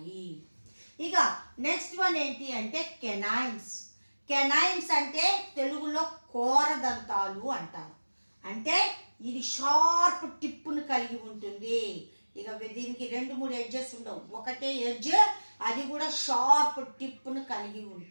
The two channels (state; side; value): inverted; both; correlation -1.00